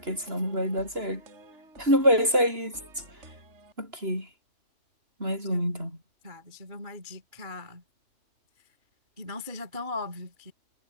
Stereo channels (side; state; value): left; late; 2.9 ms